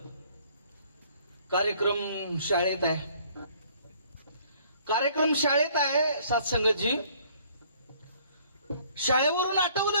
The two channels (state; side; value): inverted; both; correlation -0.59